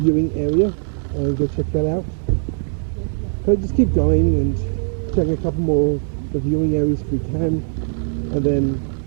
area and go check that out. Okay, just keep going and check a couple more of the viewing areas if we can, and then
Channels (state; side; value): silent; left; 65 dB below the other